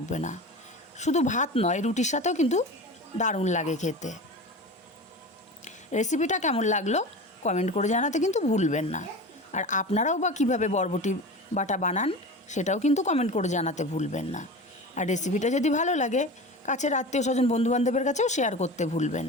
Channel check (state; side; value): normal; both; correlation 0.31